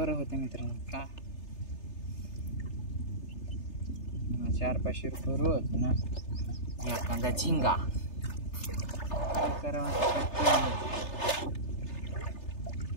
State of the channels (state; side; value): late; right; 3.3 ms